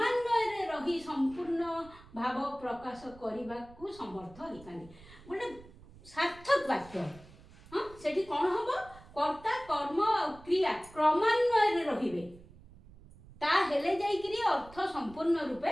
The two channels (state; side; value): noise; right; rumble, 21 dB below the sound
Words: रही संपूर्ण भाव प्रकाश करने को समर्थ होता। गोटे सार्थक वाक्य हाँ सेठी कौन हम कर्ता कर्म और क्रिया क्रमान्वय रहिबे ता हेले जाइकरी अर्थ संपूर्ण रूपे